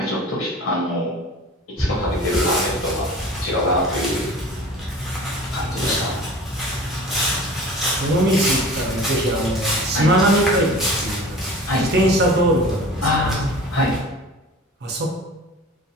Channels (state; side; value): normal; both; correlation 0.40